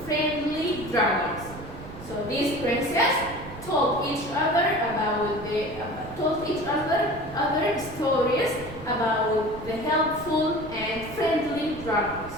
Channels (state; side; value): noise; right; rumble, 14 dB below the sound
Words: friendly dragons. So these princesses told each other other stories about the helpful and friendly dragons.